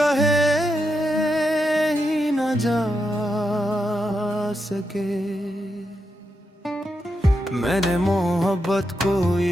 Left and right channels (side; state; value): both; normal; correlation 0.84